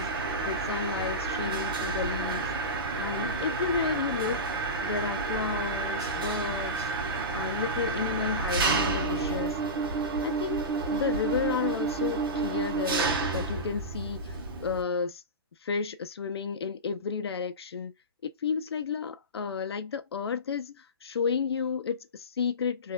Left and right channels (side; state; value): both; normal; correlation -0.18